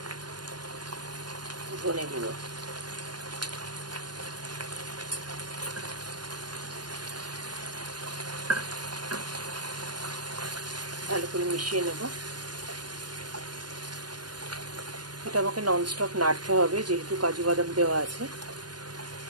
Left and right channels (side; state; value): left; late; 0.70 ms